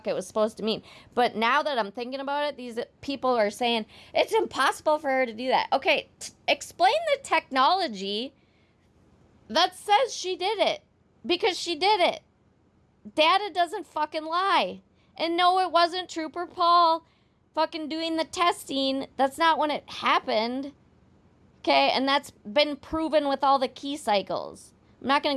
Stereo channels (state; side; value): identical; both; correlation 1.00